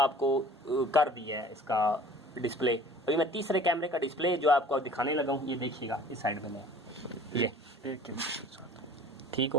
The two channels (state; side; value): normal; both; correlation 0.48